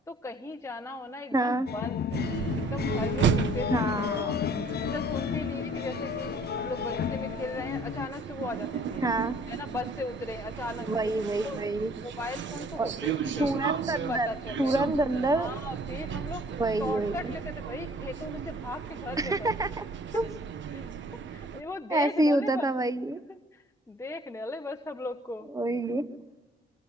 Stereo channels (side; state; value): both; normal; correlation 0.56